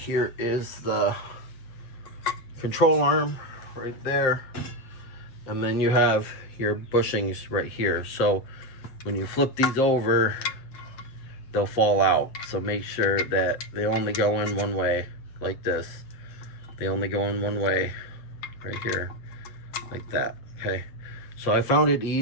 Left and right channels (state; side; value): late; right; 8.3 ms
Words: is the control arm right there, and then you have your bushings right here. So when you flip these over, they'll fall out. So make sure that they only go in one way, like this. They only go in one way right here, like that. Okay, so I found it